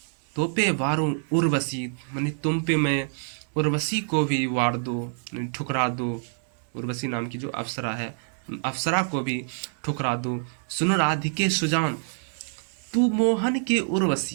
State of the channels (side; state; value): left; silent; digital silence